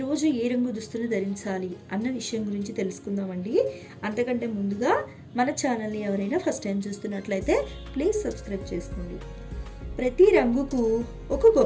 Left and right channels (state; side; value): identical; both; correlation 1.00